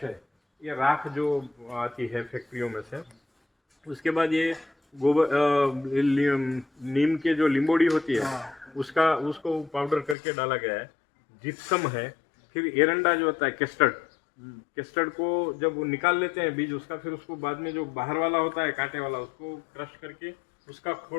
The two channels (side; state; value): right; drops out; at 10.2 s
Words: है, ये राख जो आती है फैक्ट्रियों में से। उसके बाद ये गोबर नीम के जो लिंबोड़ी होती है उसको पाउडर करके डाला गया है। जिप्सम है। फिर एरंडा जो होता है केस्टर्ड को जब वो निकाल लेते हैं बीज उसका, फिर उसको बाद में जो बाहर वाला होता है कांटे वाला, उसको क्रश करके उसका